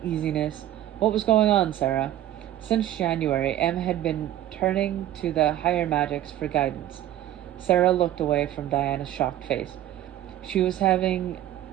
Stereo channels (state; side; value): quieter; left; 12.8 dB